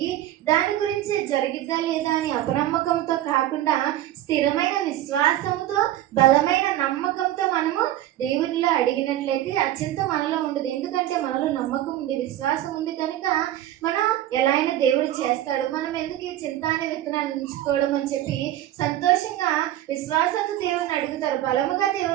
దాని గురించి జరిగిద్దా లేదా అని అపనమ్మకంతో కాకుండా స్థిరమైన విశ్వాసంతో బలమైన నమ్మకంతో మనము దేవునిలో అడిగినట్లయితే ఆ చింత మనలో ఉండదు. ఎందుకంటే మనలో నమ్మకం ఉంది, విశ్వాసం ఉంది కనుక మనం ఎలా అయినా దేవుడు చేస్తాడు. మనం ఎందుకు ఈ చింత అనే విత్తనాన్ని ఉంచుకోవడం అని చెప్పి సంతోషంగా విశ్వాసంతో దేవుని అడుగుతారు. బలముగా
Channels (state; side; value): quieter; left; 13.3 dB